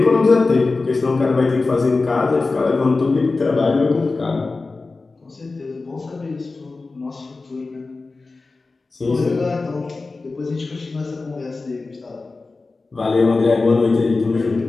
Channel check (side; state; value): right; quieter; 3.7 dB